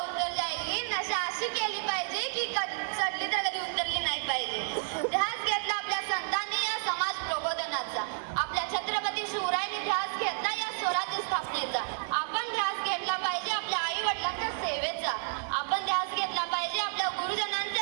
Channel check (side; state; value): left; silent; digital silence